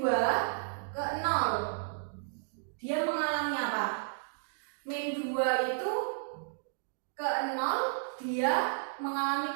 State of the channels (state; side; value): silent; left; digital silence